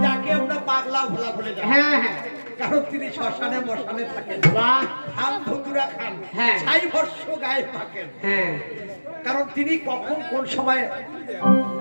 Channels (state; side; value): inverted; both; correlation -1.00